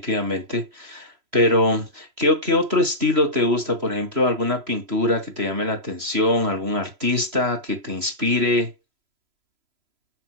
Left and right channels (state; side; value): late; left; 3.0 ms